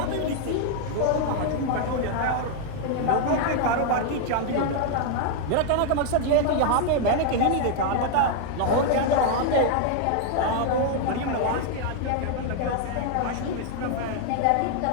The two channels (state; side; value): different; both; correlation 0.00